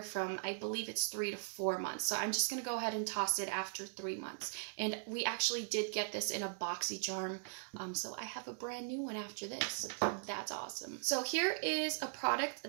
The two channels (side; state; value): left; silent; digital silence